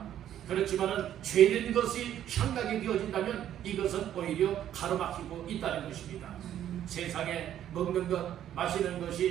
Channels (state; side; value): quieter; left; 11.0 dB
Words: 그렇지만은 죄된 것이 향락이 되어진다면 이것은 오히려 가로막히고 있다는 것입니다. 세상에 먹는 것, 마시는